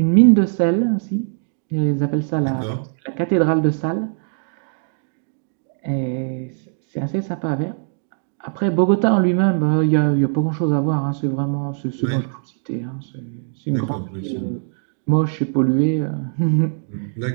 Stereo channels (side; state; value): left; silent; digital silence